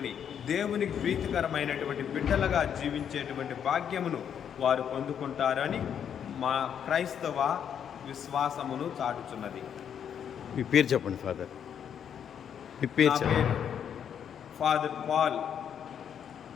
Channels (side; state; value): right; quieter; 8.4 dB